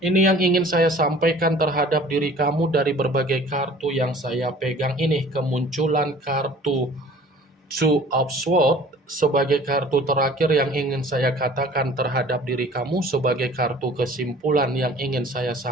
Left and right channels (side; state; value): both; normal; correlation 0.48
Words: yang ingin saya sampaikan terhadap diri kamu dari berbagai kartu yang saya pegang ini. Kemunculan kartu Two of Swords sebagai kartu terakhir yang ingin saya katakan terhadap diri kamu, sebagai kartu kesimpulan yang ingin saya